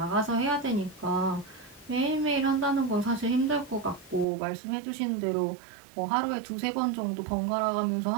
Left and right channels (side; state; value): left; drops out; at 4.2 s